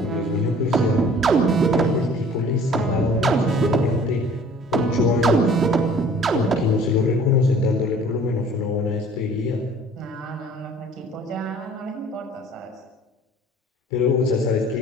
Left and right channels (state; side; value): normal; both; correlation 0.51